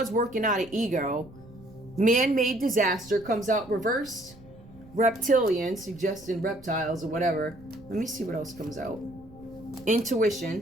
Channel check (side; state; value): right; noise; rumble, 22 dB below the sound